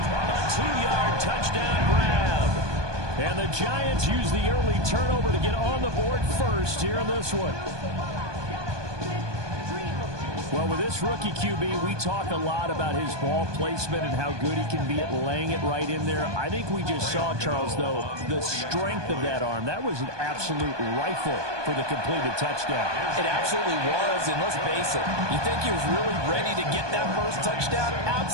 2-yard touchdown grab. And the Giants use the early turnover to get on the board first here in this one. Well, with this rookie QB, we talk a lot about his ball placement and how good he can be at laying it right in there. I think we just saw, Charles, though, the strength of that arm. That was an absolute rifle for the completed touchdown. It absolutely was, and let's face it, you think he was really ready to get that first touchdown?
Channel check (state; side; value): late; left; 1.2 ms